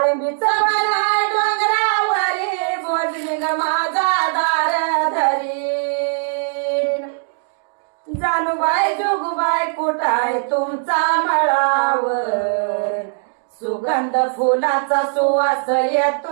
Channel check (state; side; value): silent; left; digital silence